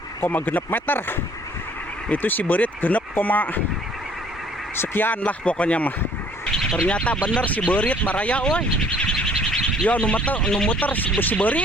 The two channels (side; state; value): both; normal; correlation 0.57